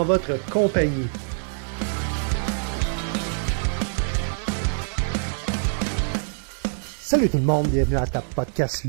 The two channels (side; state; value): left; silent; 57 dB below the other